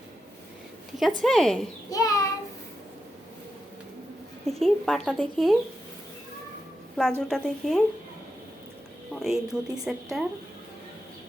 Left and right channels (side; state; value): both; normal; correlation 0.87